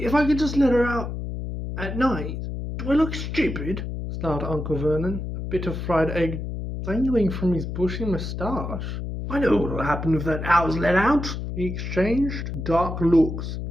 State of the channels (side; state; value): left; noise; hum, 5 dB below the sound